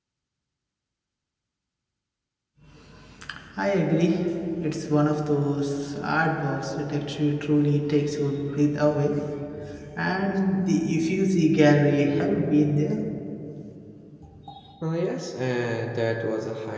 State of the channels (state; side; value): identical; both; correlation 1.00